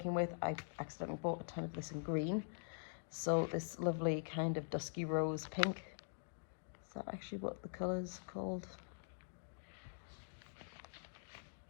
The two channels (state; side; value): silent; right; digital silence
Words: with, I accidentally bought a ton of this in green. So this lovely kind of dusky rose pink. Is that actually what the color's called?